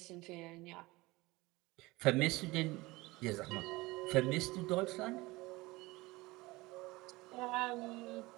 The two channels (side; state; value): left; quieter; 21.4 dB